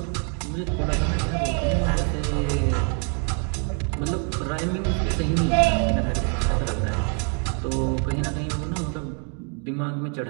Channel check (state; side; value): quieter; left; 37.5 dB